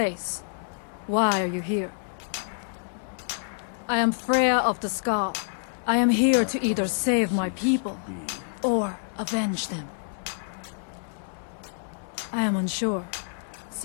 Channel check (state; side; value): silent; right; 60 dB below the other